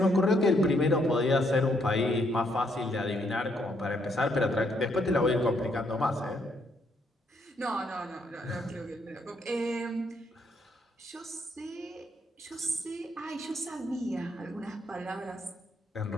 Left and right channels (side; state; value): both; normal; correlation 0.73